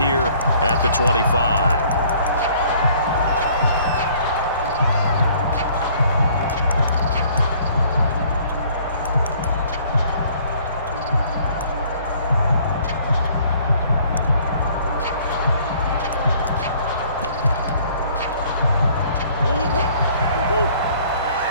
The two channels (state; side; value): inverted; both; correlation -0.58